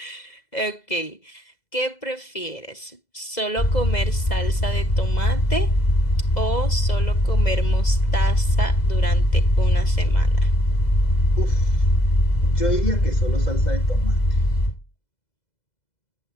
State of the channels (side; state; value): right; late; 2.0 ms